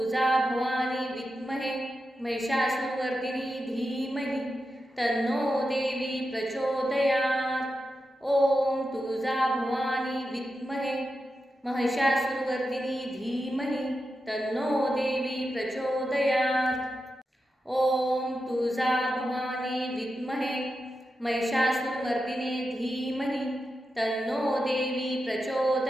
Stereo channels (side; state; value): both; normal; correlation 0.89